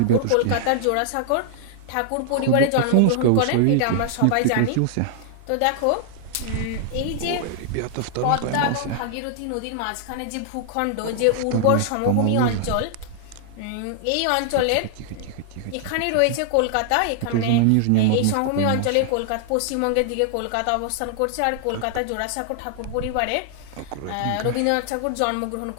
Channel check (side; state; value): both; different; correlation -0.01